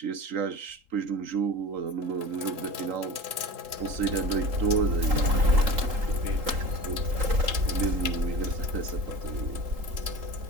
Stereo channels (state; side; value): late; left; 3.8 ms